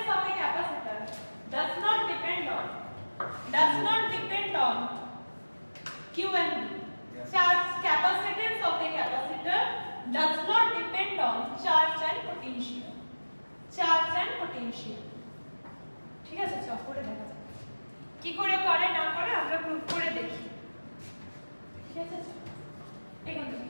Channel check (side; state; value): both; inverted; correlation -1.00